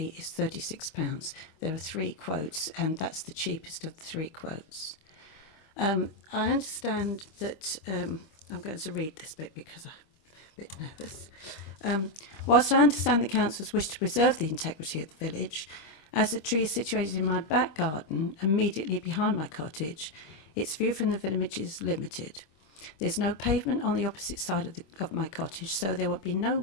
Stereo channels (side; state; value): right; late; 25 ms